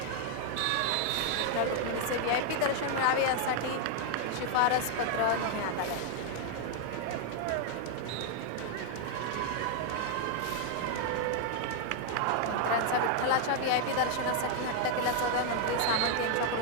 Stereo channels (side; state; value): both; different; correlation 0.00